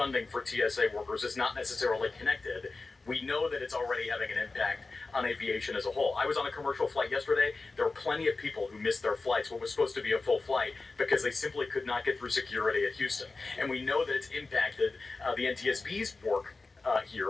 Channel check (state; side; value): quieter; right; 3.7 dB